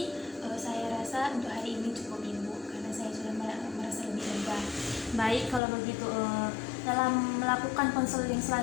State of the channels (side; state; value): right; drops out; at 5.6 s